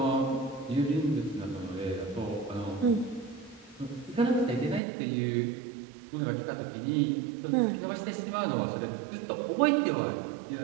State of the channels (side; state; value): left; drops out; at 4.8 s